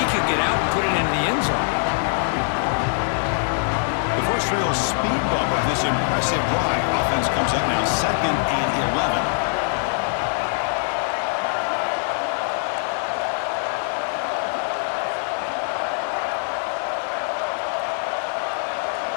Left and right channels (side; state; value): right; silent; digital silence